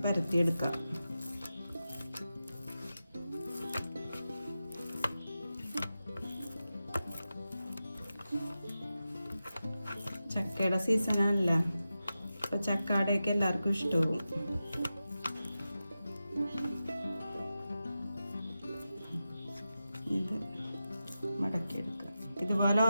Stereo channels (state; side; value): inverted; both; correlation -0.92